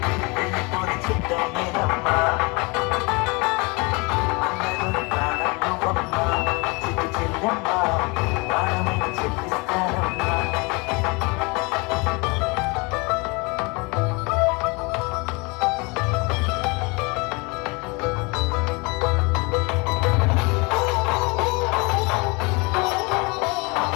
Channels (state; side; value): quieter; right; 28.3 dB